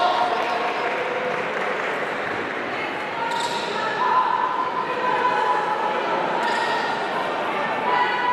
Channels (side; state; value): both; identical; correlation 1.00